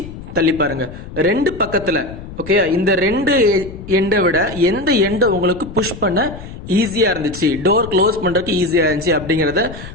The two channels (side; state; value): left; noise; rumble, 13 dB below the sound